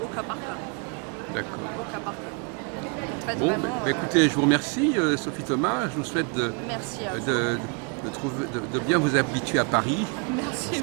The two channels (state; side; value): quieter; left; 33.7 dB